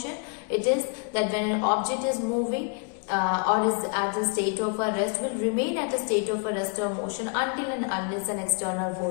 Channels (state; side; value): quieter; right; 38.1 dB